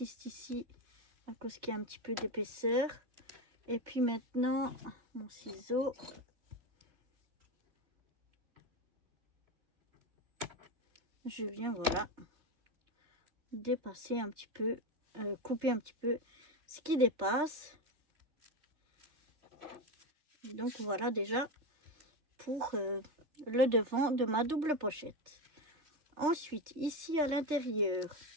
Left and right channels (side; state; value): left; late; 3.3 ms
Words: ici à cause qu'il y a un petit peu d'épaisseur. Et puis maintenant, mon ciseau. Je viens, voilà, dépasser un petit peu, couper un petit peu ce qui dépasse. Et donc voilà déjà pour le devant de ma double pochette. Ensuite, ici à l'intérieur,